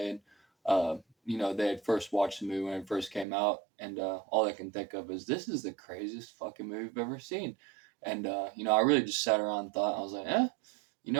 and they had first watched the movie when it first came out, and all they can think of is this is the craziest fucking movie I've ever seen. And I really just sat around and thought, I was like,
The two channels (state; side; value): drops out; left; at 3.2 s